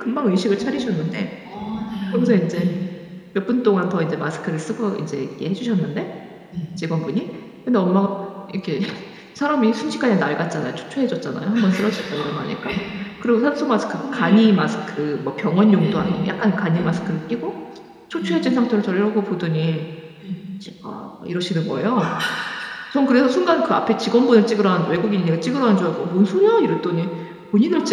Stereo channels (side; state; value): both; identical; correlation 1.00